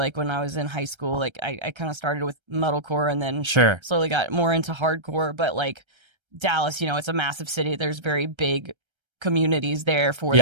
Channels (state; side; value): late; left; 1.3 ms